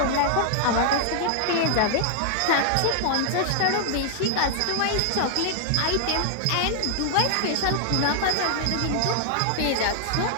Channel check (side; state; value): both; different; correlation 0.00